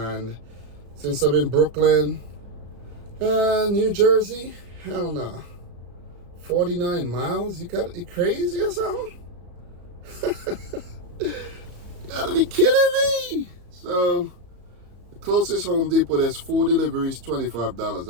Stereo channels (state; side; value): late; left; 34 ms